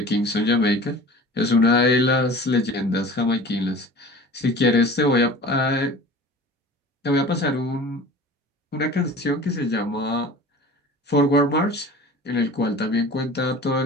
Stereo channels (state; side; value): normal; both; correlation 0.40